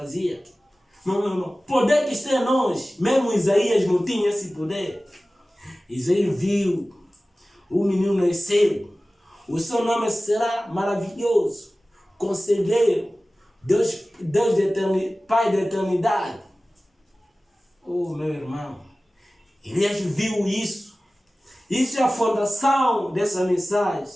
Não. Poder que está em nós. Mesmo Isaías não tinha esse poder. Isaías viu, o menino nasceu. O seu nome será maravilhoso. Conselheiro. Deus de eternidade, Pai da eternidade. Oh, meu irmão. Elias viu isso. Isso é a fundação dessa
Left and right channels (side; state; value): both; normal; correlation 0.97